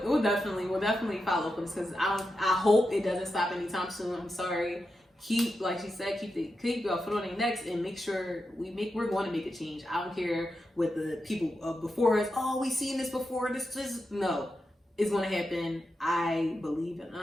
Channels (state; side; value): normal; both; correlation 0.88